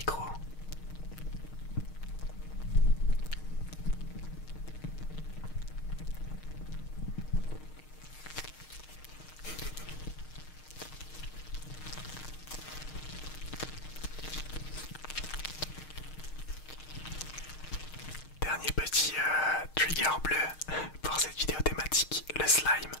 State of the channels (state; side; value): late; right; 6.5 ms